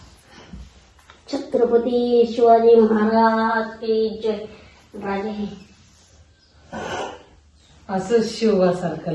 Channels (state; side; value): identical; both; correlation 1.00